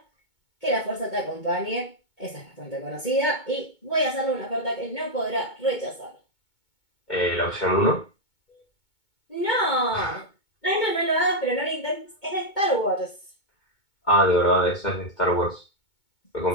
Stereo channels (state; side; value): late; right; 2.2 ms